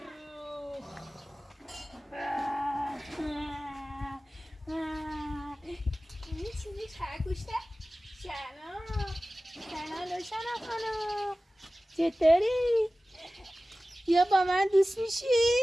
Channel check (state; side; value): normal; both; correlation 0.96